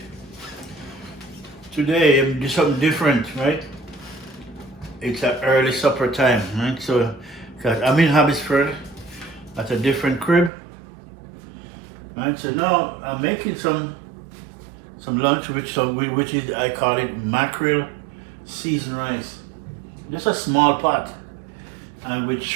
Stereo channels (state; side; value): drops out; left; at 10.5 s